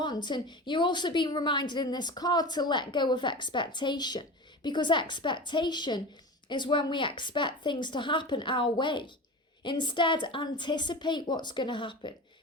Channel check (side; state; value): both; normal; correlation 0.30